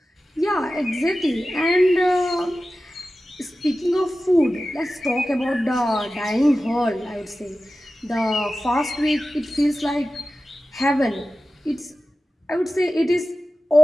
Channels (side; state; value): both; normal; correlation 0.94